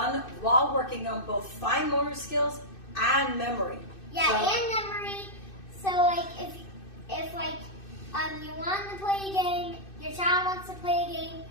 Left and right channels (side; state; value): right; late; 2.6 ms